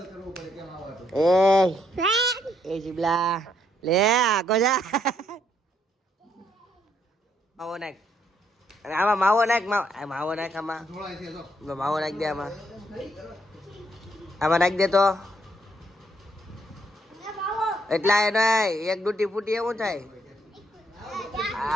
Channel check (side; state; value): both; normal; correlation 0.73